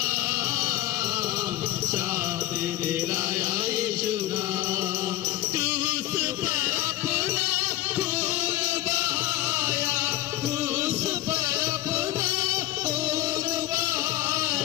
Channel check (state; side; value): quieter; right; 15.4 dB